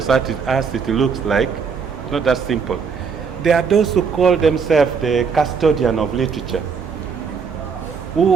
as it looks like, it's not that simple. There are those who call themselves the custodian of literature,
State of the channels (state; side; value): quieter; left; 5.8 dB